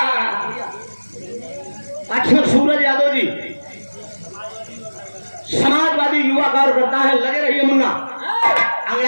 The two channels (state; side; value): inverted; both; correlation -1.00